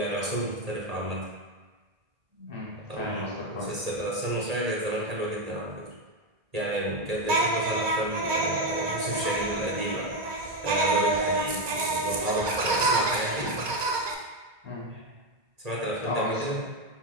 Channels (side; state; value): left; late; 2.2 ms